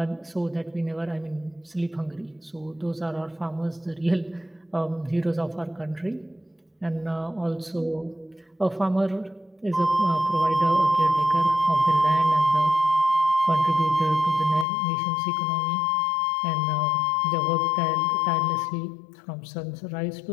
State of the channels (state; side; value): drops out; right; at 14.7 s